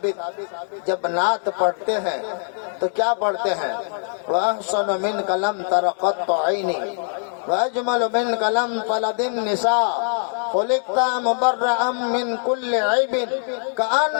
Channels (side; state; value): right; silent; digital silence